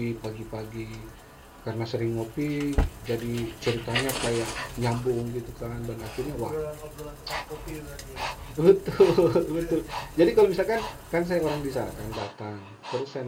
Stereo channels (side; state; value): both; identical; correlation 1.00